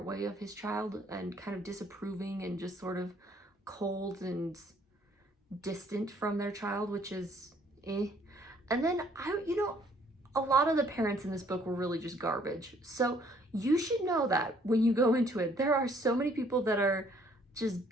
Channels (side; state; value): both; normal; correlation 0.62